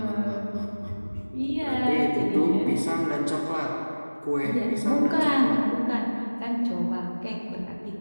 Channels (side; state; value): both; inverted; correlation -1.00